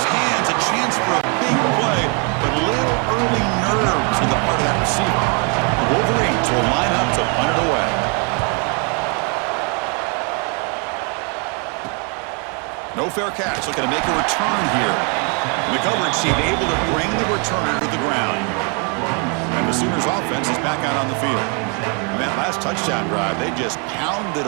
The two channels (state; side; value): quieter; left; 36.1 dB